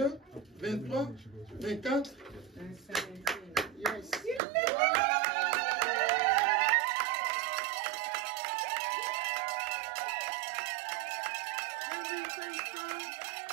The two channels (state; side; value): drops out; left; at 4.4 s